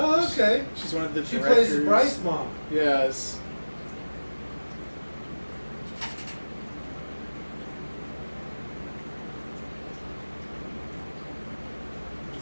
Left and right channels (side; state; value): both; inverted; correlation -1.00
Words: okay. She's one of the She directors. plays Bryce mom. Yes.